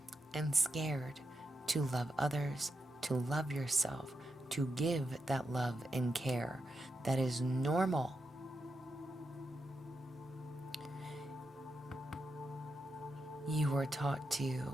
and scared to love others, to love yourself, to give that love and care that is normal. You were taught to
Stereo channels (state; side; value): normal; both; correlation 0.86